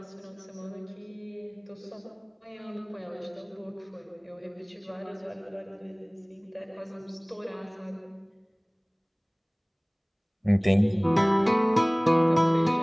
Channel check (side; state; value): both; identical; correlation 1.00